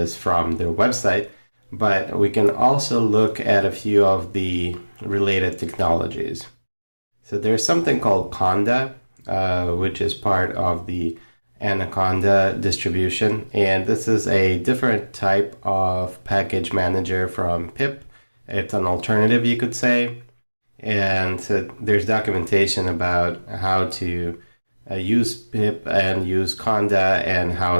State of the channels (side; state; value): both; inverted; correlation -1.00